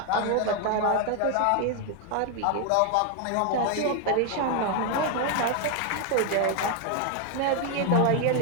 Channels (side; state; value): both; different; correlation 0.01